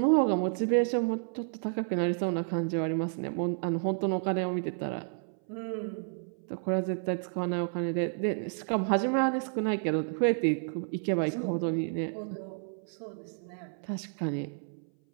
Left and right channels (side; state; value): left; silent; 57 dB below the other